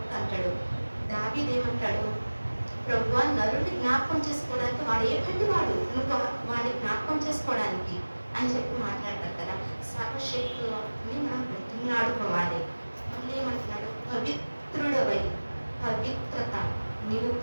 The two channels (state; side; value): inverted; both; correlation -1.00